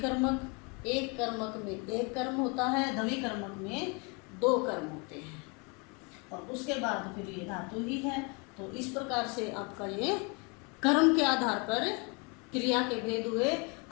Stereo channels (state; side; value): quieter; right; 31.8 dB